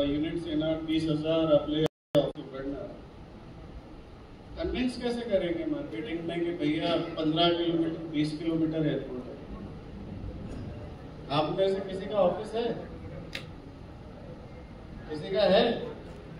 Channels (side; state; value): both; identical; correlation 1.00